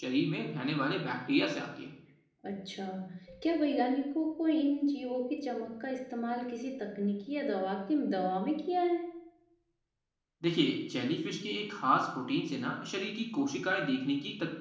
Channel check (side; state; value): both; identical; correlation 1.00